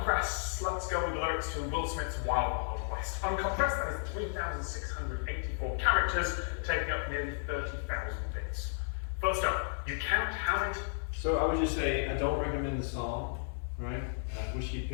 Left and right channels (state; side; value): silent; right; digital silence